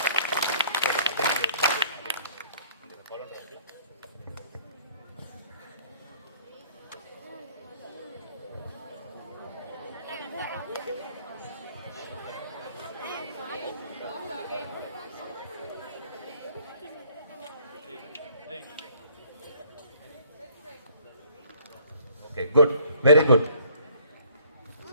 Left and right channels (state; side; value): inverted; both; correlation -0.58